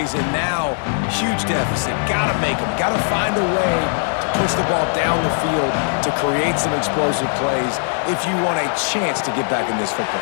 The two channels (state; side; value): silent; right; digital silence